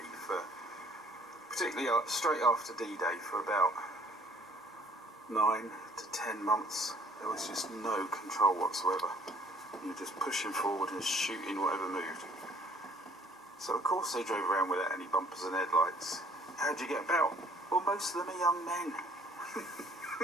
for, particularly straight after D-Day, for about 9 to 10 months. There was just no control whatsoever. You were just pushing forward and shooting whatever moved. So of course they drove around without any bumpers and headlights. How'd you get about? Well, most of them are young men.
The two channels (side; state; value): both; normal; correlation 0.59